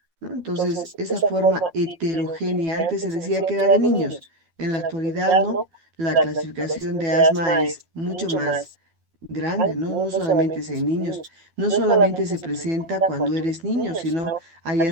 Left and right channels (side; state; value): left; late; 12 ms